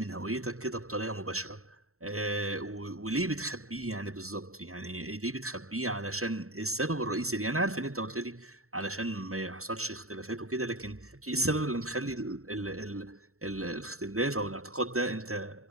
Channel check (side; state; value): left; late; 0.63 ms